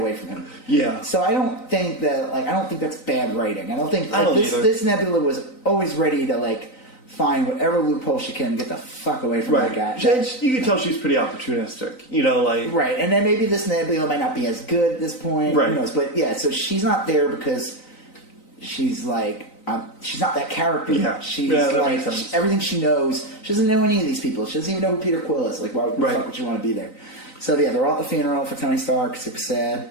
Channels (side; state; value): right; late; 3.9 ms